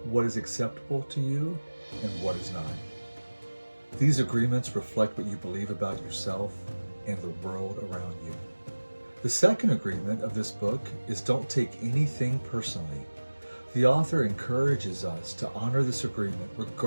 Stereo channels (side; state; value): both; inverted; correlation -1.00